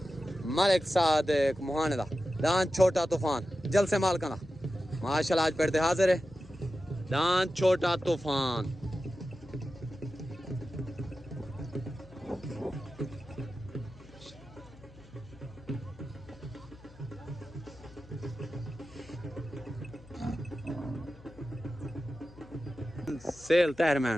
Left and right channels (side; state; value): left; noise; hum, 22 dB below the sound